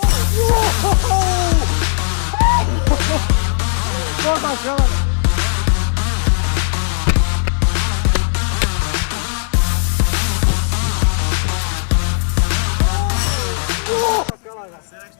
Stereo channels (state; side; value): silent; right; 68 dB below the other